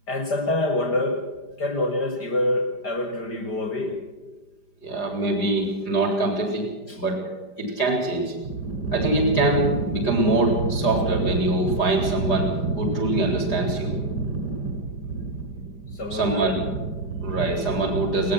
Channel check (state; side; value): late; right; 5.0 ms